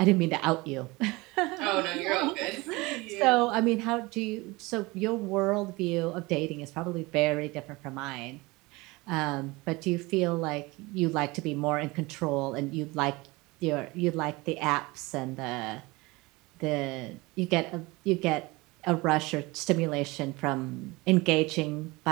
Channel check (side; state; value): left; quieter; 23.1 dB